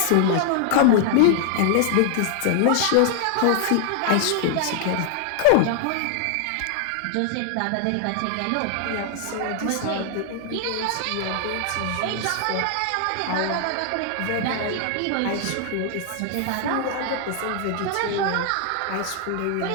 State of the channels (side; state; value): both; different; correlation 0.00